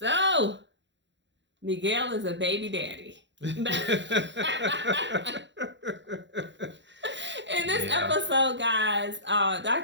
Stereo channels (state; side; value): late; left; 0.52 ms